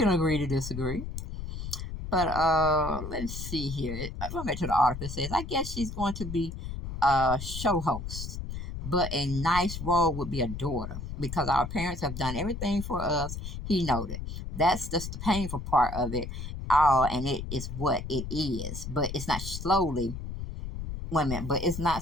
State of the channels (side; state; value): left; noise; rumble, 7 dB below the sound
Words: agree to disagree. But let's see here. Going back to the article, it says, I guess she's going to be a show host, but a nice role would be a daughter because our parents have done everything for us. He noted. That's just the painful part of it all, and it is what it is. But it's not slowly. Wait a minute. But it's